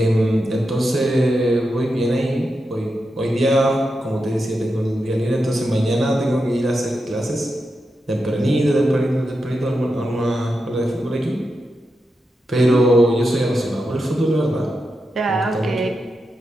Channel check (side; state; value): both; normal; correlation 0.88